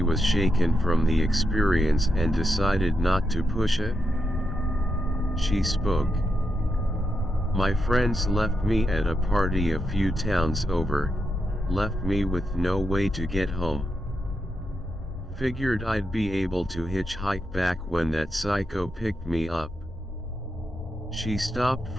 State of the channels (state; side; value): normal; both; correlation 0.85